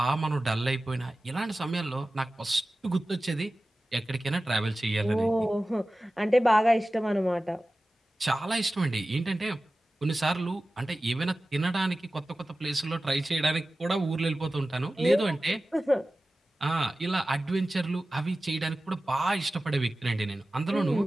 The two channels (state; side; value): normal; both; correlation 0.95